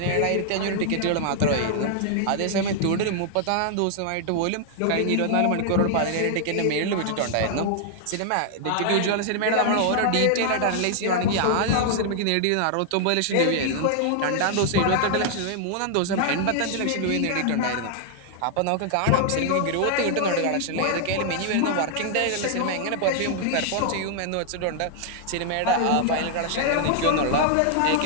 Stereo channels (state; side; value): different; both; correlation 0.00